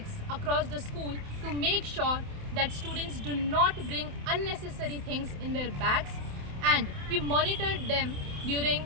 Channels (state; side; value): late; left; 28 ms